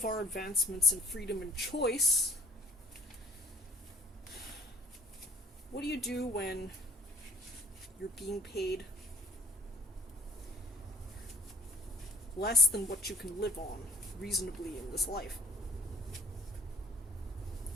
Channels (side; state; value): both; normal; correlation 0.50